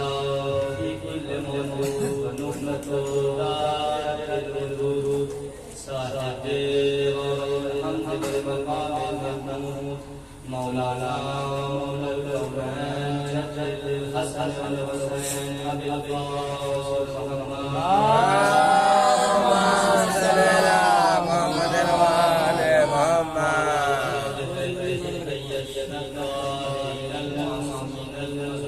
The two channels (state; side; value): identical; both; correlation 1.00